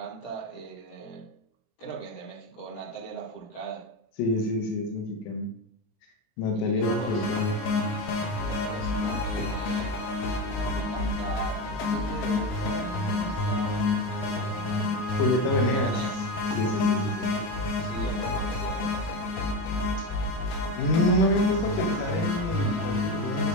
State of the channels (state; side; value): late; right; 18 ms